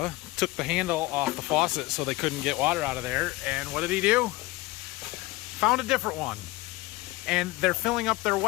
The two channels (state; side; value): quieter; right; 20.5 dB